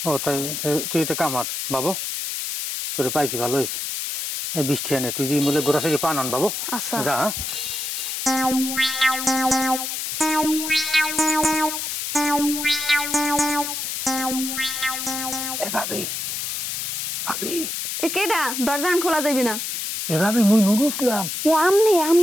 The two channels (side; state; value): left; noise; hiss, 3 dB below the sound